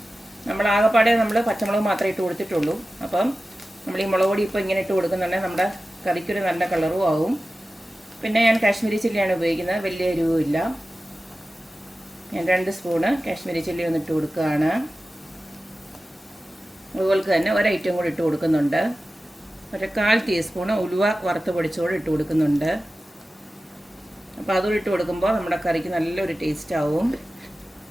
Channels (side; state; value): both; normal; correlation 0.95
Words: നമ്മൾ ആകെപ്പാടെ നമ്മൾ പച്ചമുളക് മാത്രമേ ഇട്ട് കൊടുത്തിട്ടുള്ളൂ. അപ്പം നമ്മൾ ഈ മുളക് പൊടി ഇപ്പോൾ ഇങ്ങനെ ഇട്ട് കൊടുക്കുന്നുണ്ടെങ്കിൽ നമ്മുടെ കറിക്കൊരു നല്ല കളറും ആവും. പിന്നെ ഞാൻ കാശ്മീരി ചില്ലിയാണ് ഉപയോഗിക്കുന്നത്, വലിയ എരിവുമില്ല. ഞാൻ 2 സ്പൂണ് കാശ്മീരി ചില്ലി ഒന്നിട്ട് കൊടുക്കുകയാണ്. അതുപോലെ തന്നെ ഒരു ഐറ്റം കൂടി ഇട്ട് കൊടുക്കുന്നുണ്ട്. 1/4 ടീസ്പൂണ് ഉലുവ വറുത്ത് പൊടിച്ചോട് ഇട്ട് കൊടുക്കുന്നുണ്ട്. അപ്പോൾ അതും ഇട്ട് കൊടുക്കുമ്പോൾ നമ്മുടെ കറിക്ക് നല്ലൊരു ടേസ്റ്റ് ആവും.